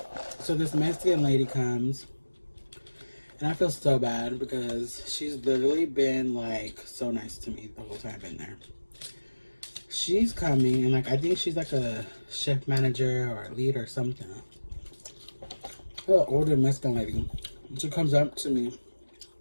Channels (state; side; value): inverted; both; correlation -1.00